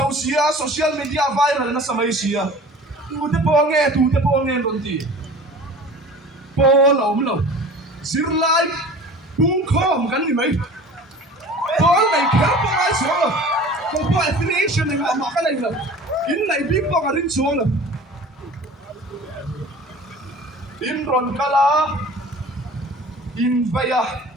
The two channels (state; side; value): normal; both; correlation 0.42